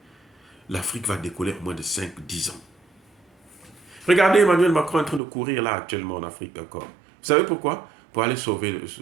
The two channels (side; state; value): left; drops out; at 5.2 s